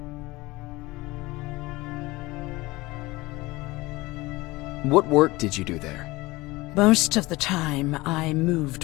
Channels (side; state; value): right; quieter; 21.0 dB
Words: What work did you do there? Most of the time, I